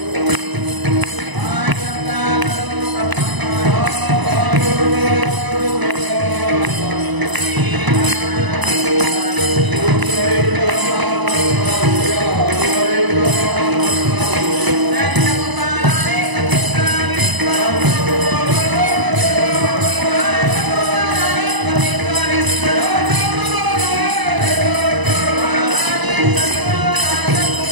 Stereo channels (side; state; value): left; late; 1.0 ms